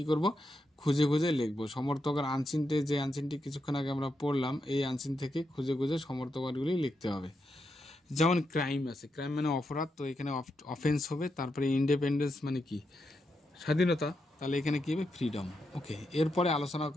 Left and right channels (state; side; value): normal; both; correlation 0.84